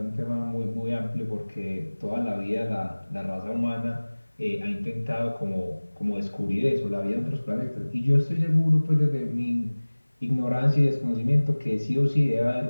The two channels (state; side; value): inverted; both; correlation -1.00